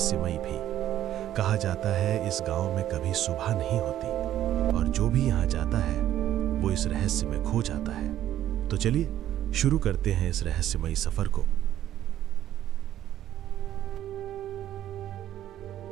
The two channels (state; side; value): quieter; left; 12.2 dB